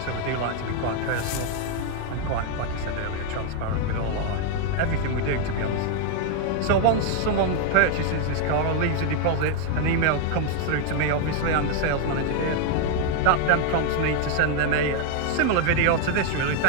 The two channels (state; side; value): different; both; correlation 0.01